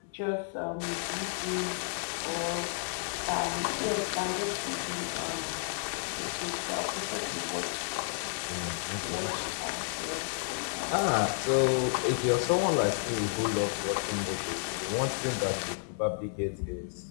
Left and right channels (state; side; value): silent; right; digital silence